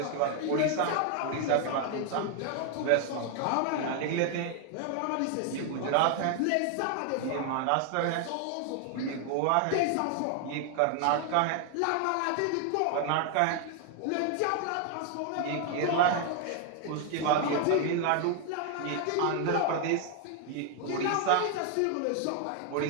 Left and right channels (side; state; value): both; different; correlation 0.00